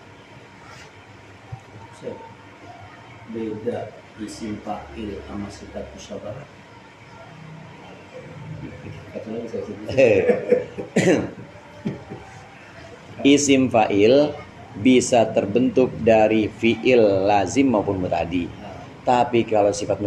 Beda isim fa'il sama sifat musyabbahat. Isim fa'il bisa terbentuk dari fi'il lazim maupun muta'addi. Tapi kalau sifat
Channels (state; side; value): identical; both; correlation 1.00